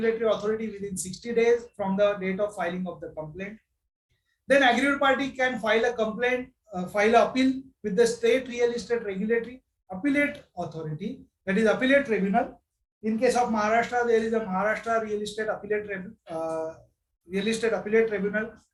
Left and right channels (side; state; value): both; identical; correlation 1.00